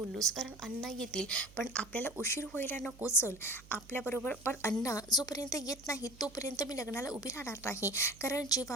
कारण अण्णा येतील पण आपल्याला उशीर व्हायला नको. चल आपल्याबरोबर. पण अण्णा जोपर्यंत येत नाही तोपर्यंत मी लग्नाला उभी राहणार नाही, कारण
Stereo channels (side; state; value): right; noise; hum, 21 dB below the sound